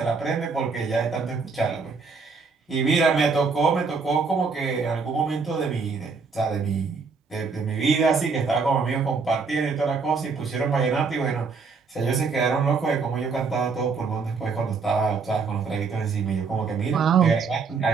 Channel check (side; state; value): left; quieter; 4.9 dB